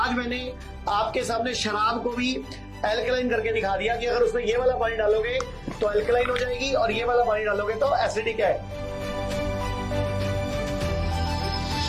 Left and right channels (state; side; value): identical; both; correlation 1.00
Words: मैंने आपके सामने शराब को भी एल्कलाइन करके दिखा दिया कि अगर उसमें ये वाला पानी डालोगे तो एल्कलाइन हो जाएगी और ये वाला पानी डालोगे तो एसिडिक है।